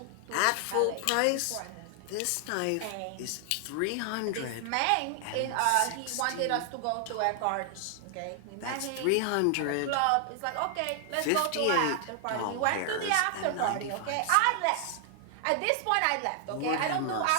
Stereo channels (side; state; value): both; different; correlation 0.00